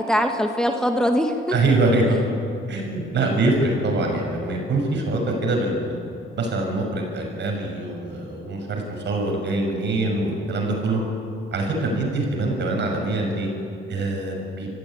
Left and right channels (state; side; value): normal; both; correlation 0.57